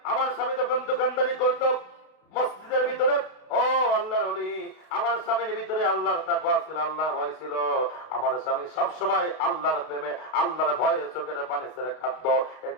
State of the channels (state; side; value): late; right; 32 ms